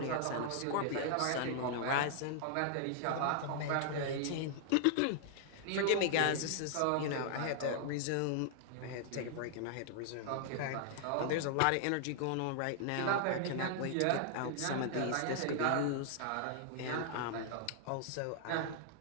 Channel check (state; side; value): different; both; correlation -0.01